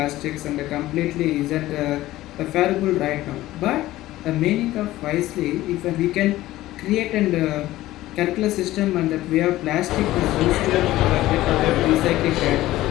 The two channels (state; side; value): quieter; right; 16.0 dB